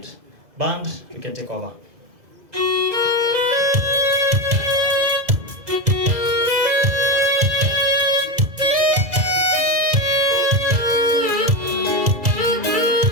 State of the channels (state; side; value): late; left; 2.0 ms